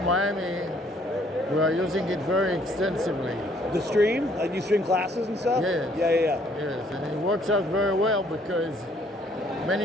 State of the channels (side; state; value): both; normal; correlation 0.64